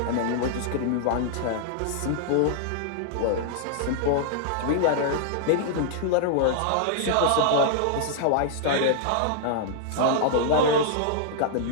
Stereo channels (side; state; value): both; different; correlation -0.01